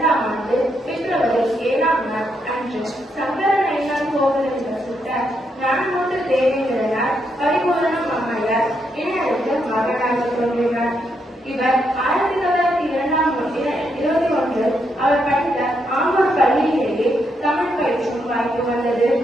ஆண்டு பிப்ரவரி 7ஆம் நாள் அன்று சங்கர நயினார் கோவிலில் வசித்த ஞானமூர்த்தி தேவேந்திரனார் பரிபூரணம் அம்மையார் இணையருக்கு மகனாக தோன்றினார். இவர் 1921 அவர் படித்த ஆம்பூர் பள்ளியிலேயே தமிழ் பயிற்சியும் வாய்ப்பு வந்தது.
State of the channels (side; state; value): both; normal; correlation 0.79